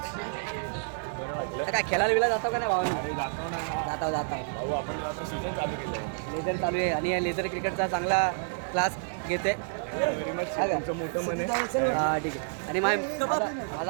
बरं वाटलं. काय खेळायला बिला जातो का नाही भावानी? जाता लेझर चालू आहे आणि या लेझर क्रिकेटचा चांगला क्लास घेते. तुमचं मोठं मन आहे. हां ठीक आहे. आणि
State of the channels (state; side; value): silent; left; digital silence